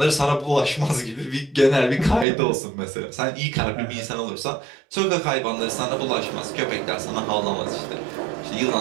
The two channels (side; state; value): left; drops out; at 2.2 s